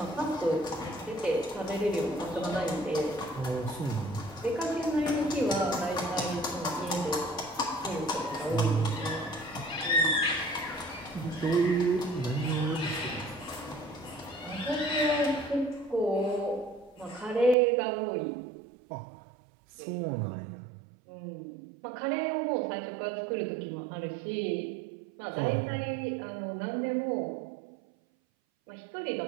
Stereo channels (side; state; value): left; drops out; at 17.6 s